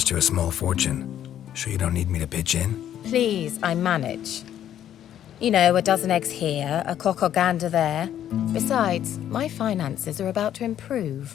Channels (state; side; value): quieter; right; 10.8 dB